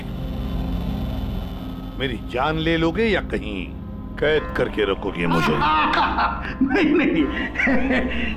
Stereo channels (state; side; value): identical; both; correlation 1.00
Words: मेरी जान ले लोगे या कहीं कैद करके रखोगे मुझे? नहीं नहीं,